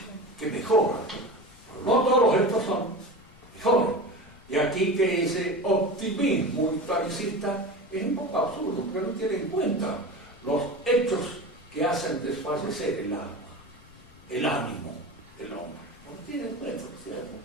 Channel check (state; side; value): noise; left; rumble, 24 dB below the sound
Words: que mejoran. Pero no todos los hechos son mejores. Y aquí que ese optimismo historicista es un poco absurdo, porque no tiene en cuenta los hechos que hacen desfallecer el alma, el ánimo del hombre. No tiene en cuenta, ¿cierto?